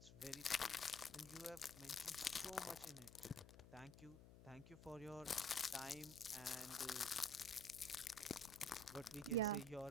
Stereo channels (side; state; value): left; noise; hum, 16 dB below the sound